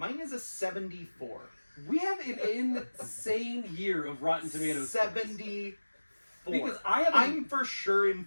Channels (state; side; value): inverted; both; correlation -1.00